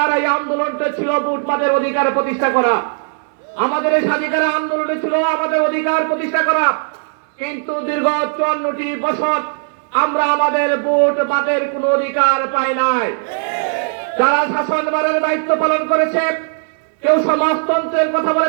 এই আন্দোলনটা ছিল ভোটবাদের অধিকার প্রতিষ্ঠা করা। আমাদের এই স্বাধীনতার আন্দোলনে ছিল আমাদের অধিকার প্রতিষ্ঠা করা। কিন্তু দীর্ঘ 54টি বছর আমরা আমাদের ভোটবাদের কোনো অধিকার পাই নাই। যারা শাসনভারের দায়িত্ব পালন করেছে, কেউ সমাজতন্ত্রের কথা বলে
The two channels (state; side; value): silent; left; digital silence